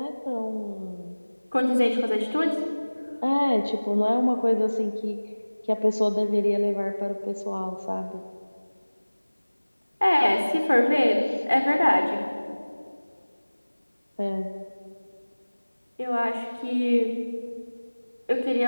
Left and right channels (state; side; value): inverted; both; correlation -1.00